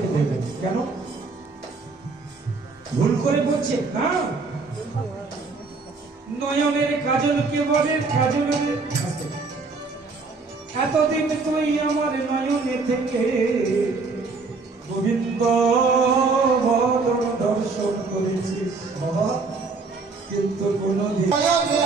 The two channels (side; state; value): left; quieter; 4.1 dB